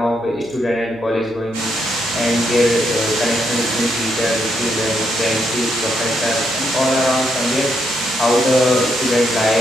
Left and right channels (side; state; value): right; noise; hum, 25 dB below the sound